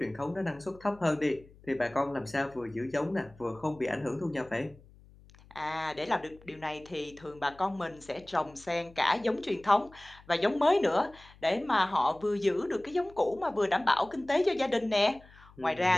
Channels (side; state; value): left; noise; hum, 24 dB below the sound